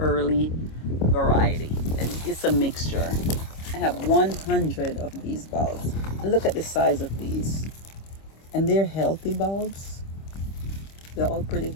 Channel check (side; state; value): right; late; 25 ms